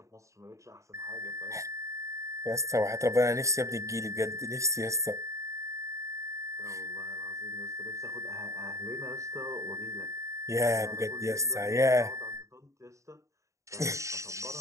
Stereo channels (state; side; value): late; left; 0.15 ms